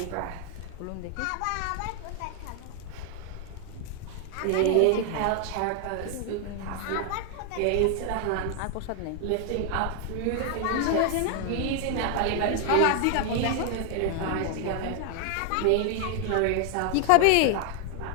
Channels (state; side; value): different; both; correlation 0.00